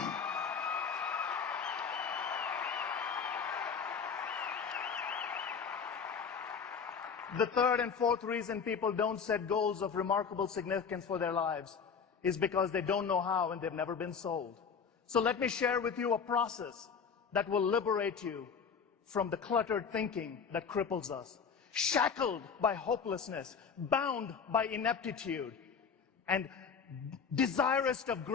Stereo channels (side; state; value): right; quieter; 6.2 dB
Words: The third and fourth reason people don't set goals of remarkable significance for their lives is because they don't know how and they've never been sold. So let me share with you a process that will liberate you from the cluttered thinking that cripples us. Shackled by hopelessness, bound by ineptitude, and desirous of